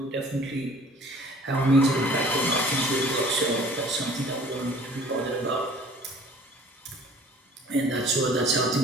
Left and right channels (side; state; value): both; normal; correlation 0.50